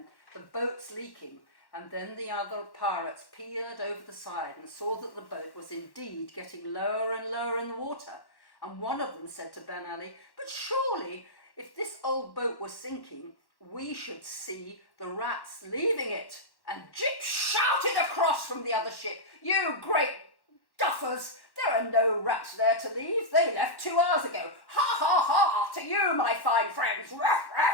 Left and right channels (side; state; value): right; late; 1.1 ms